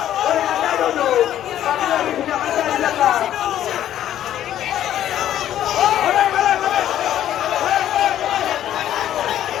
Anda duduk, kami lagi punya masa di belakang.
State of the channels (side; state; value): right; quieter; 11.6 dB